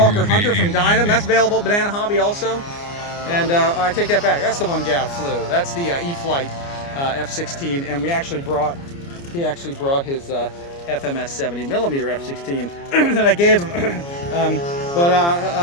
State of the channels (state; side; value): late; right; 29 ms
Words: Hunter from Dynam. That's available at Banana Hobby also. And I take that back, that's the one Gav flew. That's the E-Flight F-16, and he actually brought his FMS 70mm F-16 that I gave him.